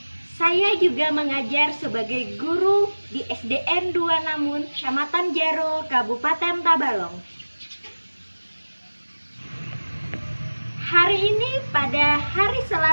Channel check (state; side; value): inverted; both; correlation -1.00